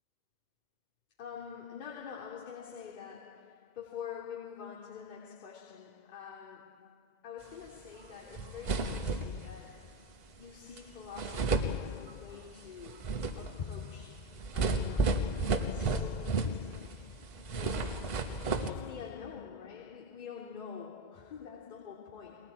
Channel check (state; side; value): late; right; 2.0 ms